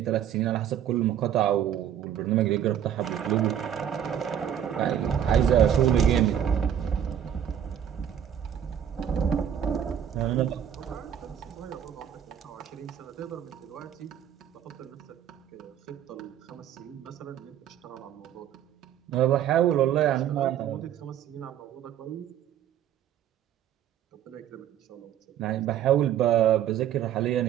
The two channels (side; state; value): left; quieter; 9.8 dB